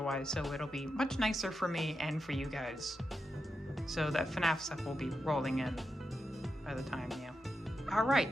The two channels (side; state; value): both; normal; correlation 0.88